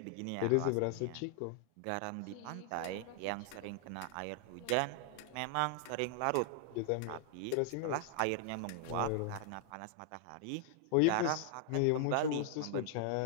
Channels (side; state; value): both; different; correlation 0.00